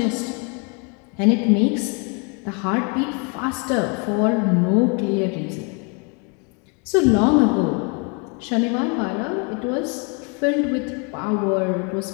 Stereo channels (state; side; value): quieter; right; 34.2 dB